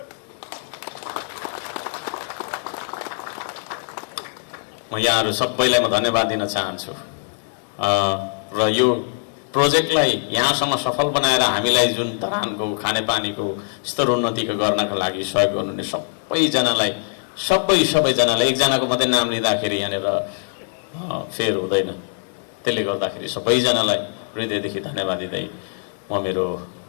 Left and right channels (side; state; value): right; silent; digital silence